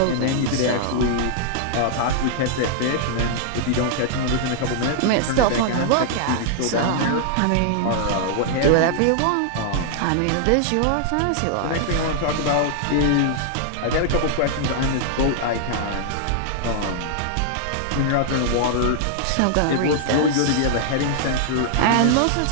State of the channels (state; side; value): different; both; correlation -0.01